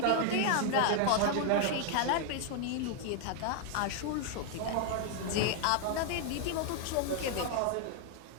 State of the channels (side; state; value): both; different; correlation 0.00